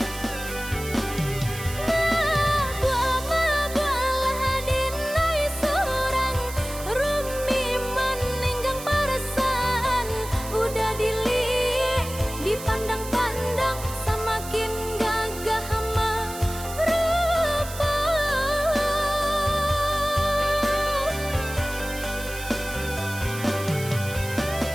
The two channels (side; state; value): right; noise; hiss, 12 dB below the sound